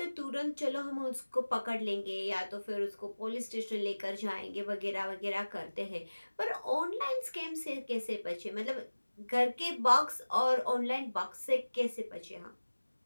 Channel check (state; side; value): inverted; both; correlation -1.00